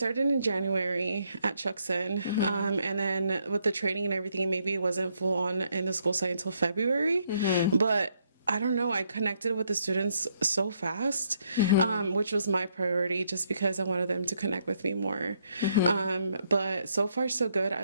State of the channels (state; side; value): inverted; both; correlation -0.73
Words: in January at Chuckson, and then with the training and everything, maybe it wasn't full on in the school site until February, but I don't know, I connected with the students so fast, which was my priority just because I wanted them to connect with me more. But so far so good. I